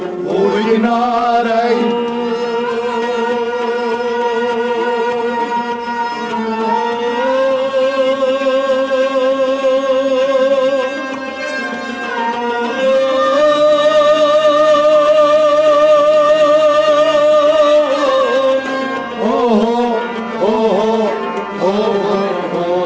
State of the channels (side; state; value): both; identical; correlation 1.00